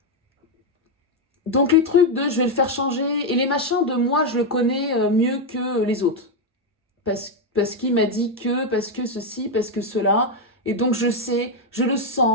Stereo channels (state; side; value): normal; both; correlation 0.04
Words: Donc les trucs de je vais le faire changer, et les machins de moi je le connais mieux que les autres. Parce qu'il m'a dit que, parce que ceci, parce que cela. Et donc je sais, je le